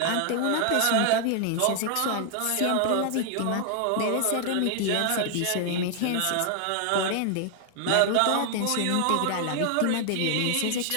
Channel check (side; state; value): both; different; correlation 0.00